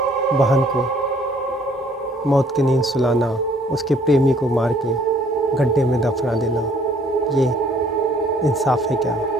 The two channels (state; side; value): normal; both; correlation 0.60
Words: बहन को मौत की नींद सुलाना, उसके प्रेमी को मार के गड्ढे में दफना देना, ये इंसाफ है क्या?